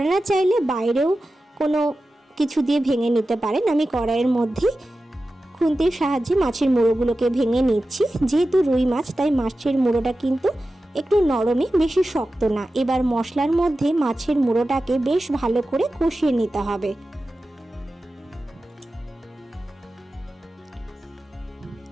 চাইলে বাইরেও কোনো কিছু দিয়ে ভেঙে নিতে পারেন। আমি কড়াইয়ের মধ্যে খুন্তির সাহায্যে মাছের মুড়োগুলোকে ভেঙে নিচ্ছি। যেহেতু রুই মাছ তাই মাছের মুড়োটা কিন্তু একটু নরমই, বেশি শক্ত না। এবার মশলার মধ্যে মাছের মুড়োটাকে বেশ ভালো করে কষিয়ে নিতে হবে।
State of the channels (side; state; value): both; normal; correlation 0.94